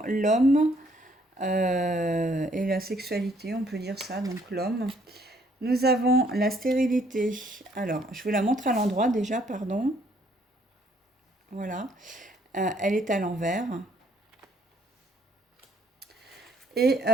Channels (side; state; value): both; normal; correlation 0.66